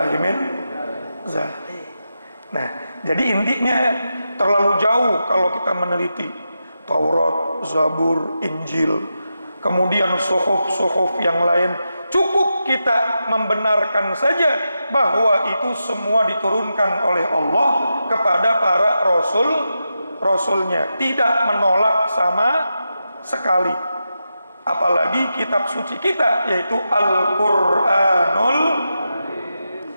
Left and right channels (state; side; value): inverted; both; correlation -0.88